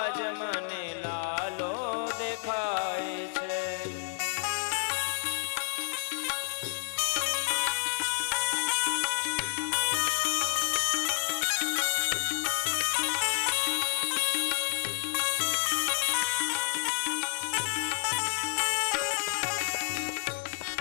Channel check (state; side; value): silent; right; digital silence